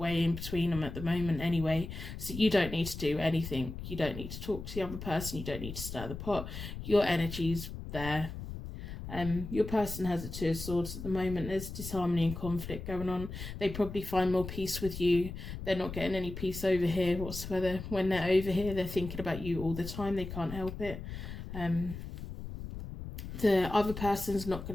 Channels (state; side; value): noise; left; rumble, 9 dB below the sound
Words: in between them at the moment anyway, so you don't need to do anything. You don't need to talk to the other person. You don't need to stir the pot. Your energy's there. Your person has a Two of Swords at the moment. There's disharmony and conflict going on. They probably find more peace with you. They're not getting any peace over here whatsoever. When they're over here, they're thinking about you all the time. They can't help it. The other person's not